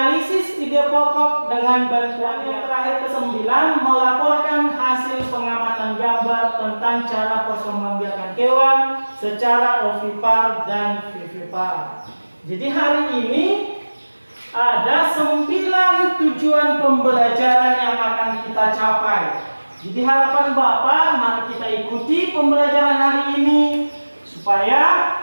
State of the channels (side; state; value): both; inverted; correlation -1.00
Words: ide pokok dengan bantuan. Yang terakhir ke-9, melaporkan hasil pengamatan gambar tentang cara perkembangbiakan hewan secara ovipar dan vivipar. Jadi hari ini ada 9 tujuan pembelajaran yang akan kita capai. Jadi harapan Bapak, mari kita ikuti pembelajaran hari ini supaya